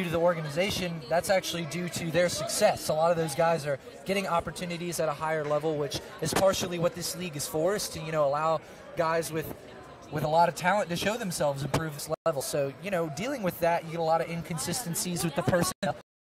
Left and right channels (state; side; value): identical; both; correlation 1.00